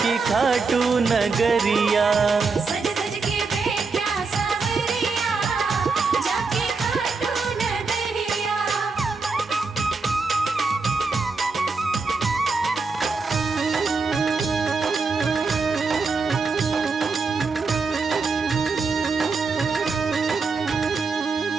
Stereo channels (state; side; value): quieter; left; 4.4 dB